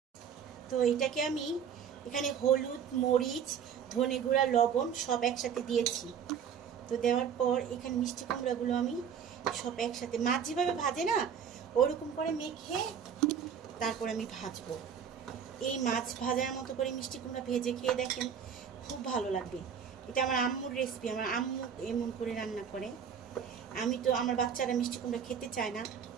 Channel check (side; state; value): left; quieter; 7.6 dB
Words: তো এটাকে আমি এখানে হলুদ, মরিচ, ধনে গুঁড়া, লবণ সব একসাথে দিয়েছি। তো দেওয়ার পর এখানে মিষ্টি কুমড়াগুলো আমি সব একসাথে, মাছ যেভাবে ভাজে না ওরকম করে মেখে তারপর আমি ভাজবো। এই মাছ ভাজার মতো করে মিষ্টি কুমড়া ভেজে খেয়ে দেখেন, খুব ভালো লাগবে। এটা আমার আম্মুর রেসিপি, আমার আম্মু এমন করে রান্না করে। আমি তো, আমার বাচ্চারা মিষ্টি কুমড়া খেতে চায় না,